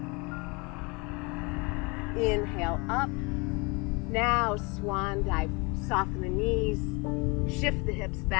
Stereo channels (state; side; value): quieter; right; 28.6 dB